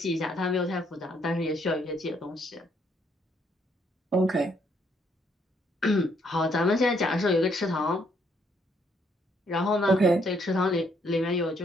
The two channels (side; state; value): both; normal; correlation 0.70